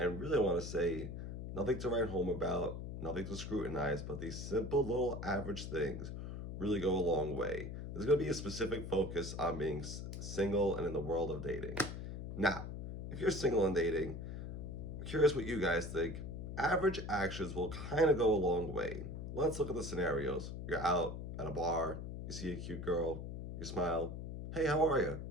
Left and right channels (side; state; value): left; noise; hum, 7 dB below the sound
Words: really, I want to say nothing to write home about, nothing to scrutinize, but these simple little average things really go a long way. There's going to be a specific focus on being single and in the world of dating. Now, if you're single and dating, I'm curious what you guys think. Average actions will kind of go a long way. Let's look at the scenarios. You're out at a bar, you see a cute girl, you smile. Hey, how are you?